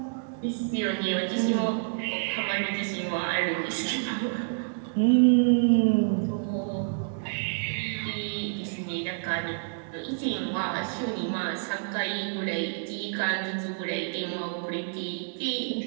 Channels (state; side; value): silent; left; digital silence